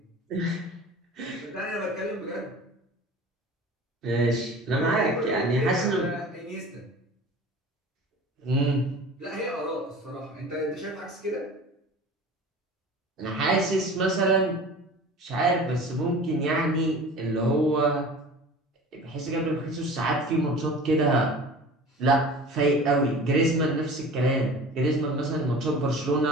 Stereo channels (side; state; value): both; normal; correlation 0.40